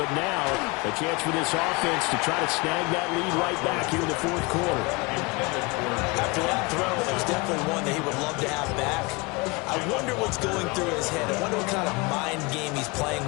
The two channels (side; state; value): right; quieter; 26.0 dB